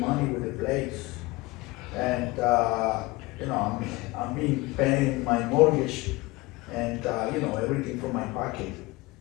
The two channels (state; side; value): quieter; right; 22.2 dB